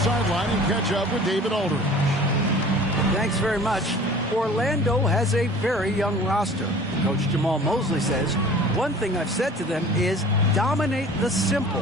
and catch up with David Aldridge. Thanks very much. Orlando has a very young roster. Coach Jamal Mosley says, one thing I've said to them is dominate the simple.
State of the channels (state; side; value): normal; both; correlation 0.45